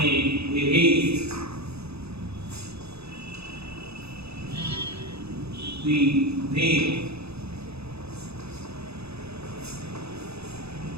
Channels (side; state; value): left; late; 0.79 ms